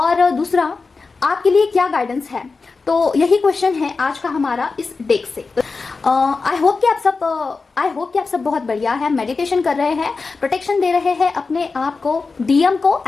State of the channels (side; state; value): right; quieter; 4.3 dB